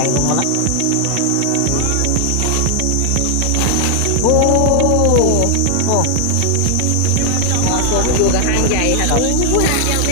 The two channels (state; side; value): different; both; correlation 0.00